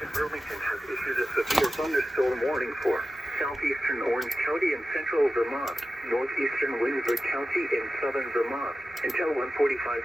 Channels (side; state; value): both; normal; correlation 0.93